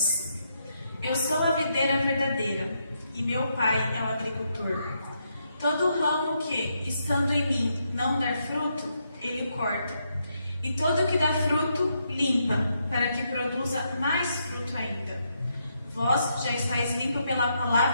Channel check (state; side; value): inverted; both; correlation -0.79